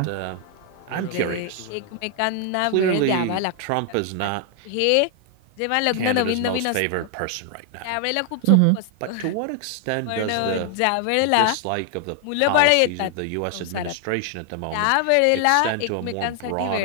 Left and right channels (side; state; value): both; different; correlation 0.00